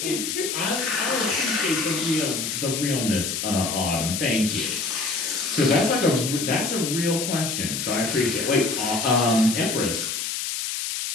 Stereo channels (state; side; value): noise; left; hiss, 3 dB below the sound